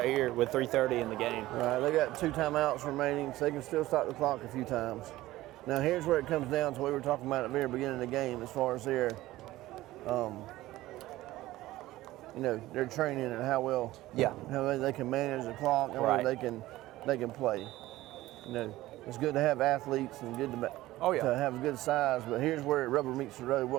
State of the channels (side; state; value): left; quieter; 16.7 dB